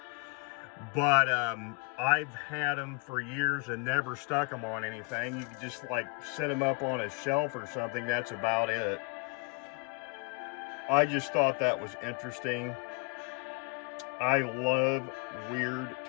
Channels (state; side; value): quieter; right; 30.9 dB